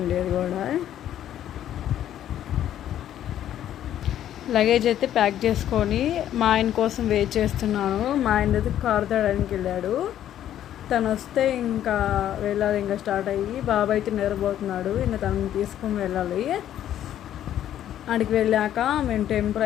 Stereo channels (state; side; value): quieter; right; 11.3 dB